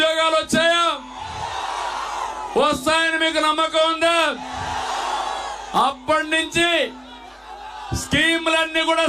వచ్చాయా? వస్తాయని మీకు నమ్మకం ఉందా? అప్పటి నుంచి స్కీములన్నీ కూడా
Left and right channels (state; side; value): identical; both; correlation 1.00